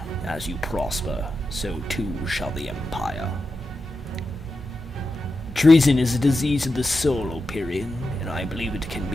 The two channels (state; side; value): normal; both; correlation 0.89